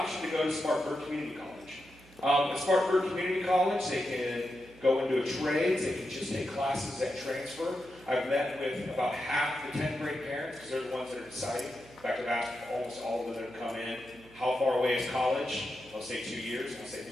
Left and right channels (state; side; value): noise; right; hum, 24 dB below the sound